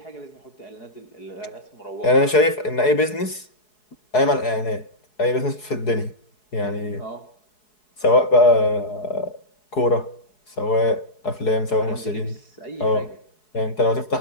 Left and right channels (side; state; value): right; late; 4.7 ms